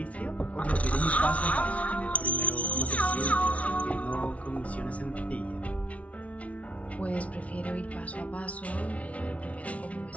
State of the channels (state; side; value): late; right; 0.065 ms